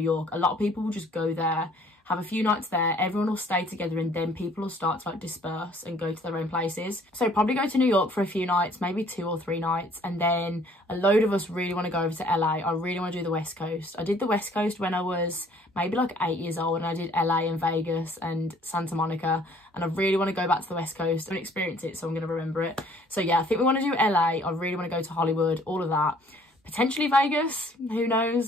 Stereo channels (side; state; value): both; normal; correlation 0.58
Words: York, a lot of people will just go there, have a few nights there, everyone will stay together, and then people will start to like disperse and go to their own places. So probably go to New York for a few nights, maybe 2 or 3 nights, and then a load of us really want to go over to LA. I really want to do the West Coast. I did the West Coast when I was maybe like 8 years old, and I did LA and Vegas and Santa Monica, and I really want to go back to the West Coast and experience it, so I'm going to remember it. So yeah, I think we want to do LA. I really want to go to Hollywood, all of that. Potentially Vegas, who